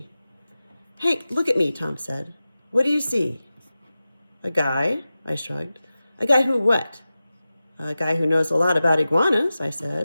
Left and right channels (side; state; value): both; inverted; correlation -0.95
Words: Hank, look at me, Tom said. What do you see? A guy, I shrugged. A guy who what? A guy who knows a lot about iguanas, I